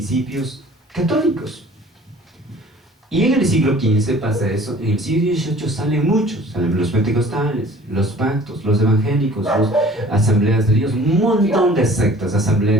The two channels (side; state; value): both; normal; correlation 0.49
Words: católicos. Y en el siglo XV pasa eso. En el siglo XVIII salen muchos, salen los pentecostales, los pactos, los evangélicos, las asambleas de Dios, un montón de sectas,